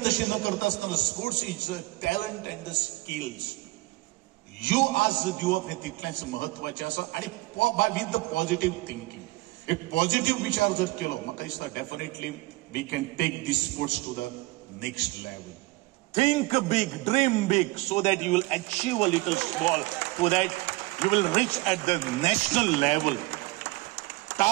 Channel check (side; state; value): left; quieter; 22.0 dB